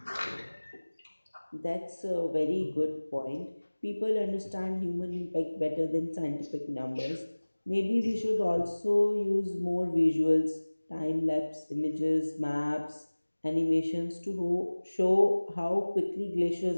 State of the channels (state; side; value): inverted; both; correlation -1.00